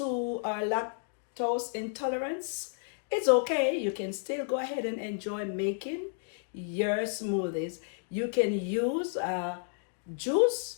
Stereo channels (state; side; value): silent; right; digital silence